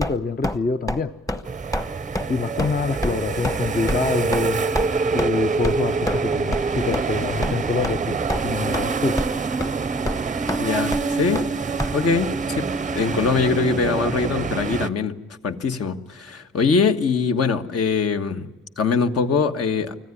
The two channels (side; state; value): both; normal; correlation 0.49